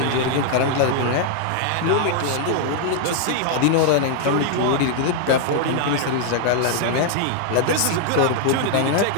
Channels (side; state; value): both; different; correlation 0.00